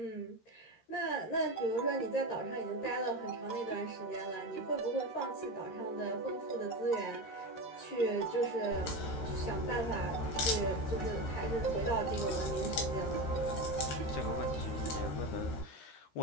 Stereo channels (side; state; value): right; late; 13 ms